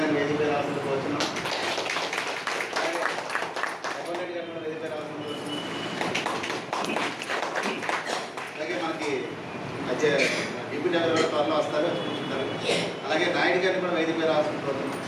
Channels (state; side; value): identical; both; correlation 1.00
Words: వేదికపై రావాల్సిందిగా వచ్చినాం. అలాగే మనకి డిప్యూటీ ఎవరు కూడా త్వరలో వస్తారు. అలాగే నాయుడు గారిని కూడా వేదికపై రావాల్సిందిగా కోరుతున్నాం.